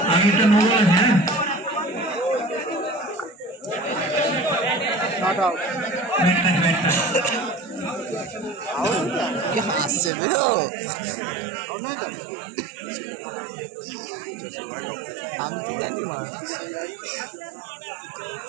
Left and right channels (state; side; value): drops out; left; at 10.1 s